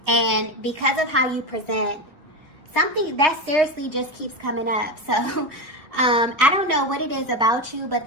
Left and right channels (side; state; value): left; late; 1.8 ms